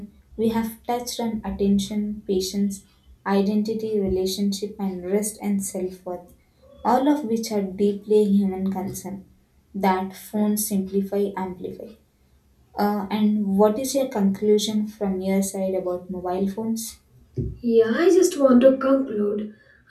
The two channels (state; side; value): identical; both; correlation 1.00